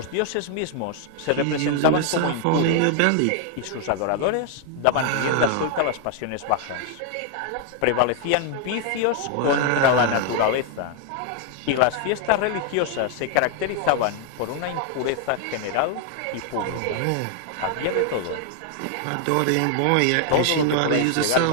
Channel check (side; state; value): both; different; correlation 0.00